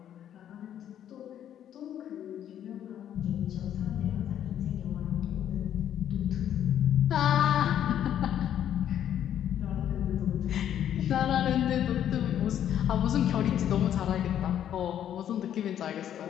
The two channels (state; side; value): quieter; right; 10.3 dB